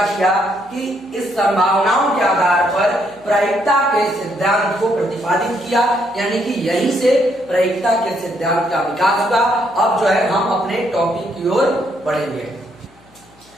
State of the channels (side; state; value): left; noise; hum, 29 dB below the sound